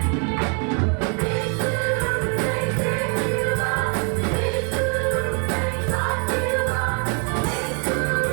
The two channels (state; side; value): quieter; left; 38.4 dB